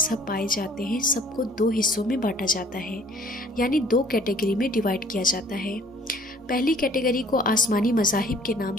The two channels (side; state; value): both; normal; correlation 0.55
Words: پائے جاتے ہیں سب کو دو حصوں میں بانٹا جاتا ہے، یعنی دو کیٹیگری میں ڈیوائیڈ کیا جاتا ہے۔ پہلی کیٹیگری کو آسمانی مذاہب کے نام